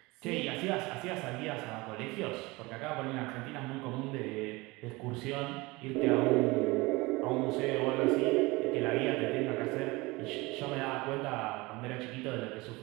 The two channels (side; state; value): left; quieter; 23.0 dB